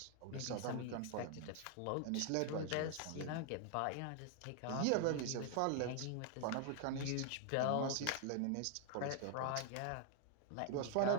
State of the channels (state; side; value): different; both; correlation 0.00